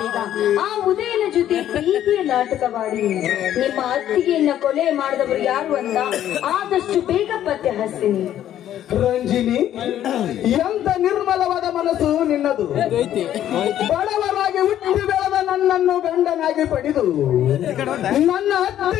ಆ ಉದಯನ ಜೊತೆ ಪ್ರೀತಿಯ ನಾಟಕವಾಡಿ ನಿಮ್ಮ ಅತ್ತಿಗೆಯನ್ನ ಕೊಲೆ ಮಾಡಿದವರು ಯಾರು ಅಂತ ಆದಷ್ಟು ಬೇಗ ಪತ್ತೆ ಹಚ್ತೀನಿ. ರಂಜಿನಿ, ಎಂತ ನಿರ್ಮಲವಾದ ಮನಸ್ಸು ನಿನ್ನದು. ಬಡವರಾಗಿ ಹುಟ್ಟಿ ಬೆಳೆದ ನನ್ನನ್ನು ಗಂಡನಾಗಿ ಪಡೆದು ನನ್ನ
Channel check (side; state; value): right; quieter; 11.5 dB